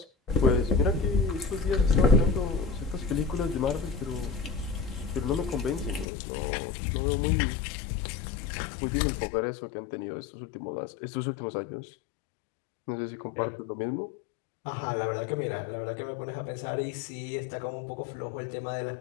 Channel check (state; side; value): drops out; right; at 6.1 s